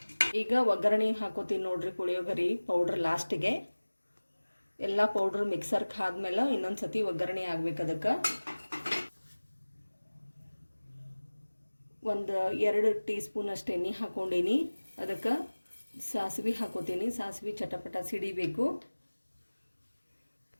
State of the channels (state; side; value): inverted; both; correlation -1.00